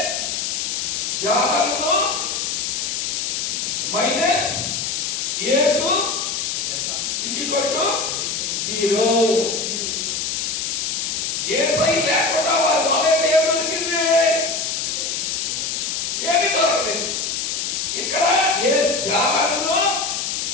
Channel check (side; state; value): left; noise; hiss, 1 dB below the sound